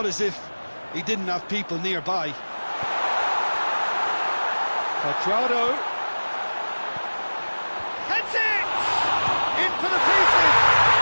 as if he didn't have people nearby. Quadrado. Heads it! In for the pieces!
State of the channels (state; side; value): inverted; both; correlation -1.00